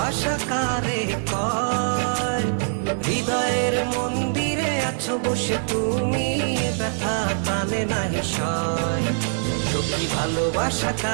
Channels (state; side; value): silent; left; digital silence